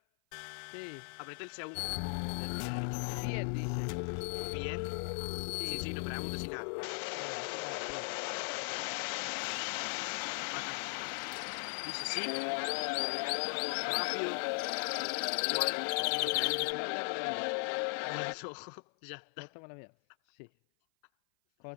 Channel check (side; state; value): right; silent; 53 dB below the other